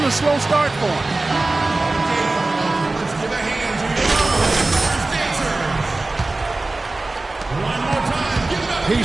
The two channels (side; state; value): left; quieter; 3.1 dB